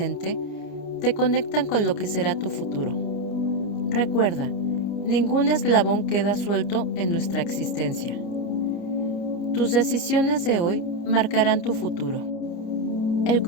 te conectan con lo que será tu futuro. Recuerda, ningún eslabón queda suelto en nuestra existencia. Tus decisiones de hoy marcarán tu futuro. El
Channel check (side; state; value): right; late; 29 ms